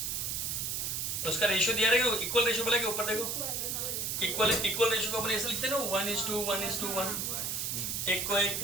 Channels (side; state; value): right; noise; hiss, 1 dB below the sound